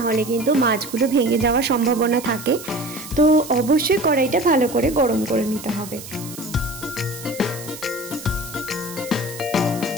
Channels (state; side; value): noise; right; hiss, 13 dB below the sound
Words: হলে কিন্তু মাছগুলো ভেঙে যাওয়ার সম্ভাবনা থাকে। তো অবশ্যই কড়াইটা ভালো করে গরম করে নিতে হবে।